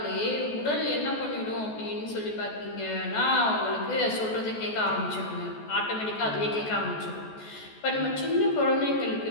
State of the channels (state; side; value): late; right; 14 ms